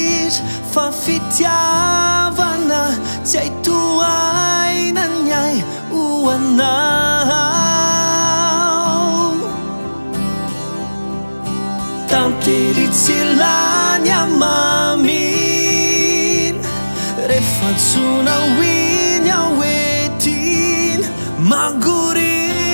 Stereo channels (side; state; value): both; inverted; correlation -1.00